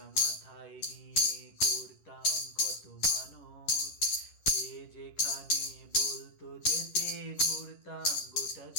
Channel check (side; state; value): right; late; 11 ms